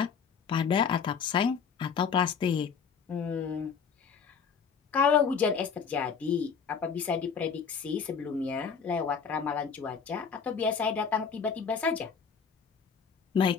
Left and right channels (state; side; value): quieter; right; 6.3 dB